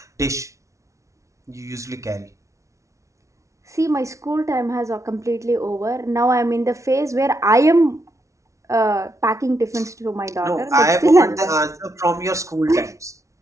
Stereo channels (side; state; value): left; late; 0.14 ms